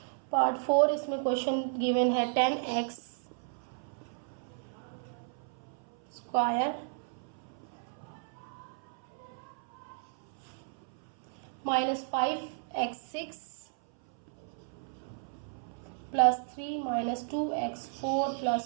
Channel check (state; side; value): silent; left; 55 dB below the other